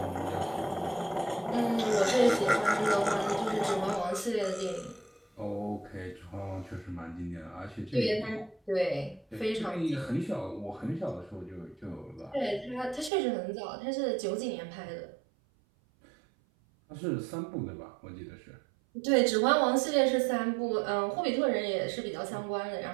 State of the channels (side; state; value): left; drops out; at 13.1 s